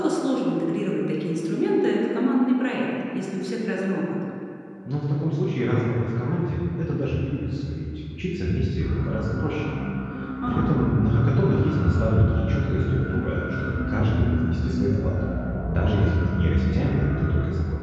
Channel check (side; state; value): both; identical; correlation 1.00